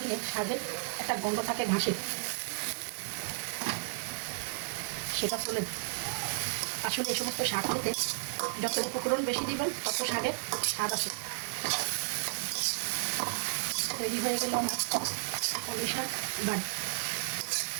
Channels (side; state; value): left; silent; 56 dB below the other